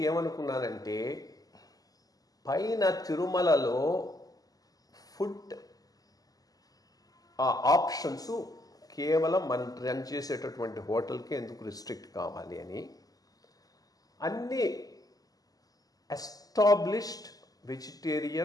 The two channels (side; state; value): right; late; 0.18 ms